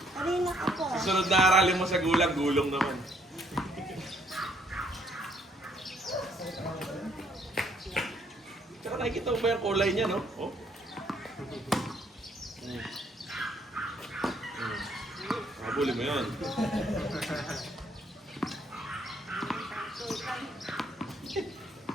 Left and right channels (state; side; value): normal; both; correlation 0.67